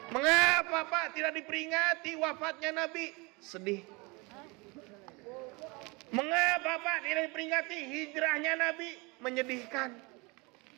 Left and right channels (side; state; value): left; quieter; 27.6 dB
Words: Mengapa Pak tidak diperingati wafatnya Nabi? Sedih. Mengapa Pak tidak diperingati hijrahnya Nabi? Menyedihkan.